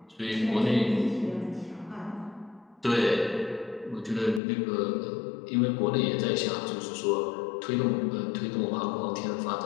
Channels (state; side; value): drops out; right; at 4.4 s